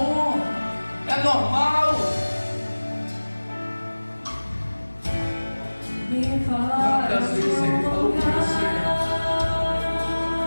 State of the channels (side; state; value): both; inverted; correlation -1.00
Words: é normal. Quantas vezes ele falou com você?